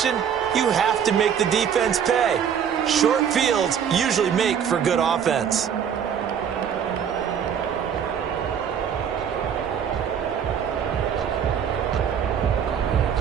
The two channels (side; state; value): left; quieter; 8.1 dB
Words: you have to make the defense pay. Short fields usually make for good offense.